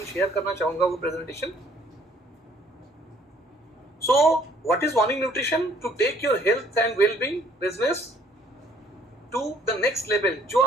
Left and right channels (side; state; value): both; normal; correlation 0.61